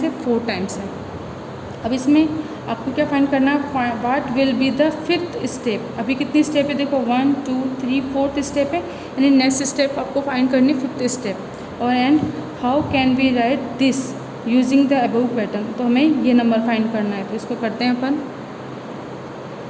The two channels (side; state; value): both; identical; correlation 1.00